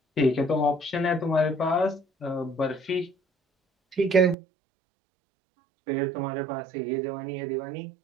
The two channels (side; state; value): left; drops out; at 4.4 s